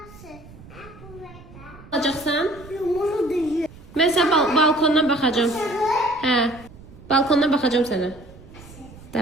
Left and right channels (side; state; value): right; noise; rumble, 20 dB below the sound